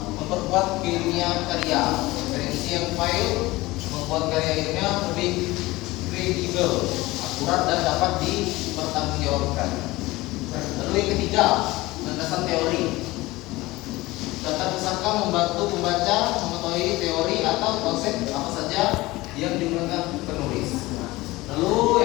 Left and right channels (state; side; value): quieter; right; 19.9 dB